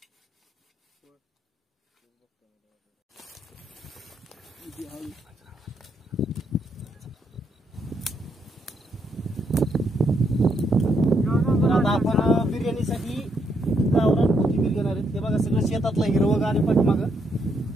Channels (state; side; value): normal; both; correlation 0.76